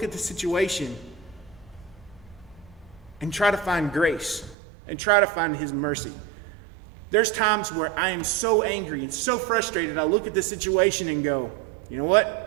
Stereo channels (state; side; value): drops out; left; at 4.5 s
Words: at the situation and try to find grace and try to find his mercy. There's times where I am so angry and so frustrated, I look at the situation and go, you know